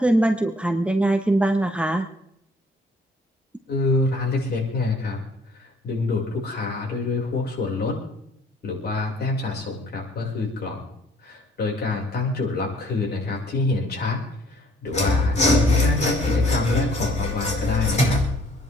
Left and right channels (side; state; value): both; normal; correlation 0.60